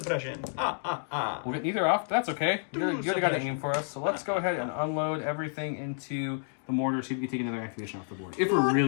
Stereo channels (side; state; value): right; silent; digital silence